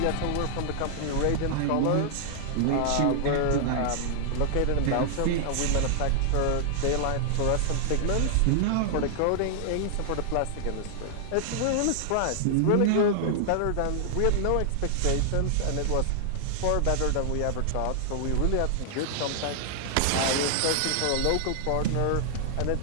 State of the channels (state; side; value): different; both; correlation -0.01